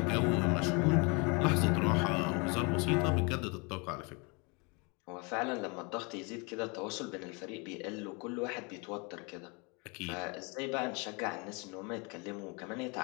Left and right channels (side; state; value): right; quieter; 30.8 dB